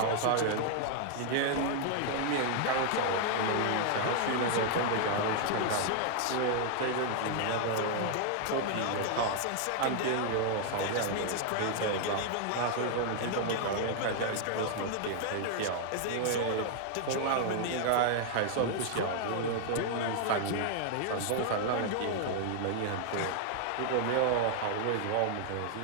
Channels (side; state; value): both; different; correlation 0.00